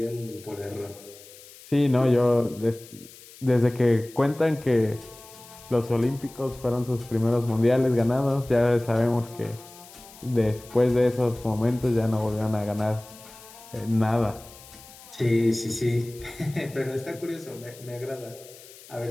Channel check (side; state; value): left; noise; hiss, 20 dB below the sound